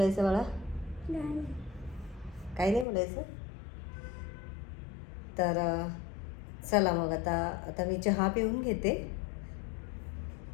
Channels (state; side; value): drops out; right; at 2.9 s